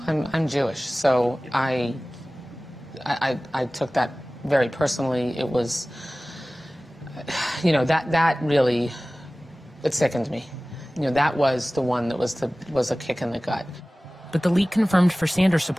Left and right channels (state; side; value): normal; both; correlation 0.98